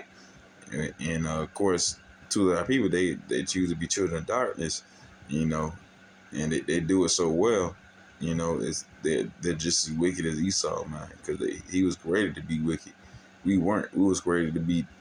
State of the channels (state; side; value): identical; both; correlation 1.00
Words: and of course, to our people, they choose to be children of darkness, and they do it so well. They're just as wicked as Esau, man, because he was created to be wicked. We weren't. We was created to be